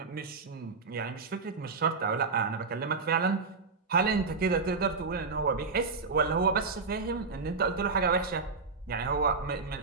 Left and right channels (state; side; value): quieter; left; 4.4 dB